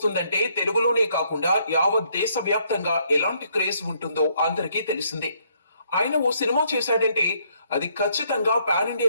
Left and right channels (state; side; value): inverted; both; correlation -0.70